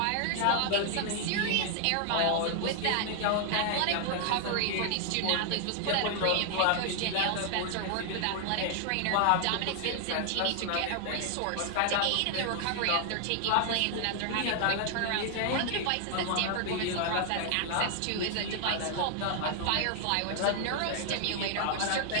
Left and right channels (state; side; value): different; both; correlation 0.00